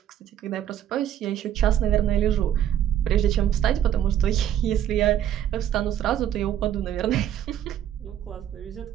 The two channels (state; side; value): quieter; left; 10.6 dB